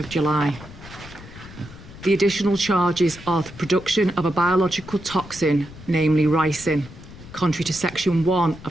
July. The additional charges are the production of a biological toxin, namely ricin, contrary to Section 1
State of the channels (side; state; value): left; noise; rumble, 17 dB below the sound